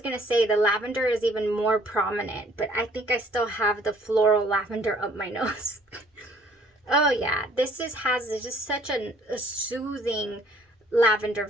to say the lavender is even more prominent, but I think I still have the floral lavender up my nose. Oh yeah, this has just such a soothing lavender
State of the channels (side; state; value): both; normal; correlation 0.59